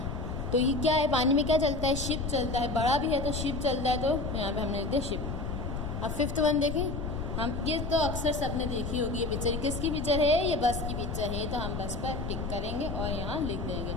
तो ये क्या है? पानी में क्या चलता है? शिप चलता है। बड़ा भी है तो शिप चलता है, तो यहाँ पे हमने लिख दिया शिप। अब फिफ्थ वन देखें, हम ये तो अक्सर सबने देखी होगी ये पिक्चर। किसकी पिक्चर है? ये बस की पिक्चर है, तो हम बस पर टिक करेंगे और यहाँ लिख देंगे।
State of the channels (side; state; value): left; noise; rumble, 4 dB below the sound